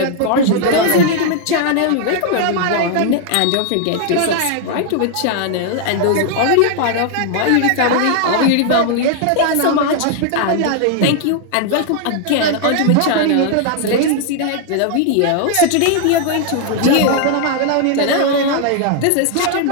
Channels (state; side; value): different; both; correlation 0.00